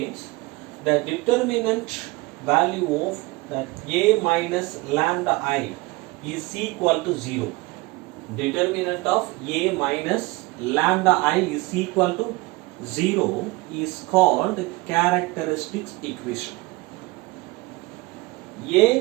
the determinant value of that A minus lambda I is equal to 0. Determinant of A minus lambda I is equal to 0 is called characteristics equation.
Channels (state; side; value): quieter; left; 22.7 dB